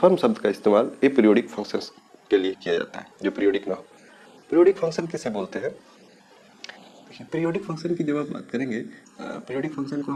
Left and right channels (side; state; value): both; identical; correlation 1.00